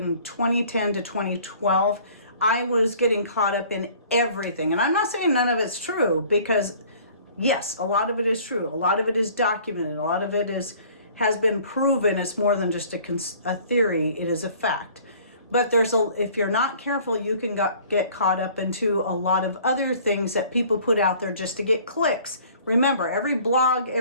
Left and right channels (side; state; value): both; inverted; correlation -0.52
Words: 2010 to 2012. I was getting caught up in everything. And I'm not saying none of it's true, because yes, a lot of it is true. A lot of it is documented. A lot of it has been proven. It's more than just a theory. It is a fact. But if you're not careful, you can get caught up into a lot of other things that people put out there just to get clicks. Remember, every blog,